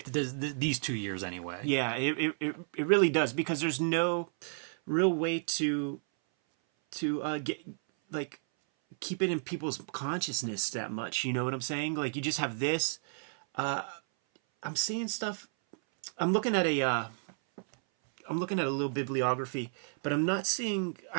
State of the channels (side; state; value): left; silent; 56 dB below the other